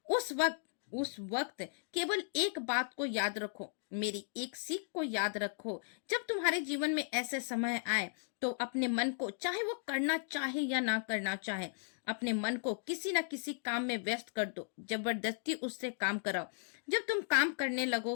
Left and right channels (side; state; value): right; silent; digital silence